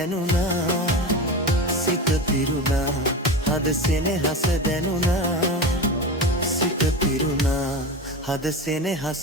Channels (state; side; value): normal; both; correlation 0.26